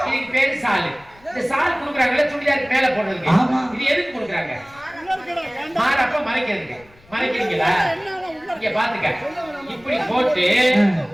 இதுக்கு பேரு சாலு இந்த சால் குடுக்குறாங்கல்ல சுடிதாருக்கு மேல போடுறதுக்கு இது எதுக்கு குடுக்குறாங்க மாறப்ப மறைக்கிறதுக்கு மறைக்கிறீங்களா இங்க பாத்துக்க இப்படி போட்டு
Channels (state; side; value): noise; left; rumble, 27 dB below the sound